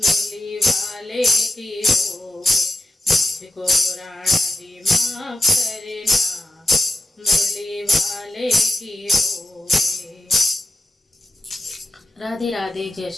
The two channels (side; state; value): both; normal; correlation 0.91